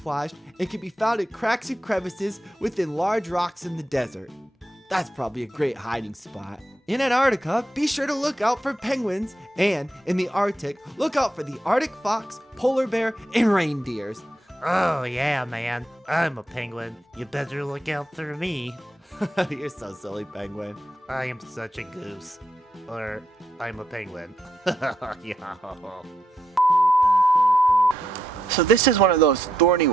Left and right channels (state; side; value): normal; both; correlation 0.81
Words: and can be found in cracks and crevices within large rocks in the desert. That's probably a great hiding spot. In Antarctica, be sure to look out for penguins, and in the Arctic, look out for the Arctic fox, polar bear, and reindeers. Oh yeah, man. I'm a penguin. You better look out for me. You're so silly, penguin. I am such a goose. Or, I'm a penguin. Yeah. So this is one of those thorny